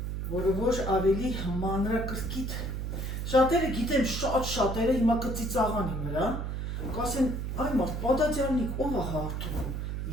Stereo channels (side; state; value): right; noise; hum, 3 dB below the sound